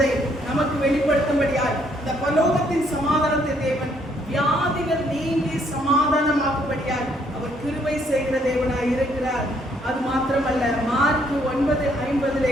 நமக்கு வெளிப்படுத்தும்படியாய் இந்த பரலோகத்தின் சமாதானத்தை தேவன் வியாதிகள் நீங்கி சமாதானமாக்கும்படியாய் அவர் கிருபை செய்கிற தேவனாய் இருக்கிறார். அது மாத்திரமல்ல, மார்க்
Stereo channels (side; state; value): both; normal; correlation 0.68